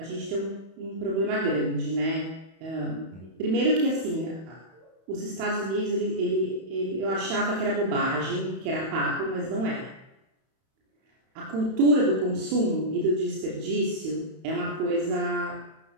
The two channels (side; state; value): left; late; 31 ms